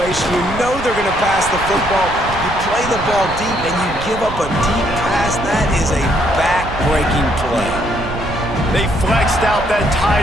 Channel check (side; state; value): right; noise; rumble, 10 dB below the sound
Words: You know they're going to pass the football. You play the ball deep, and you give up a deep pass. That is a back-breaking play. They flexed out that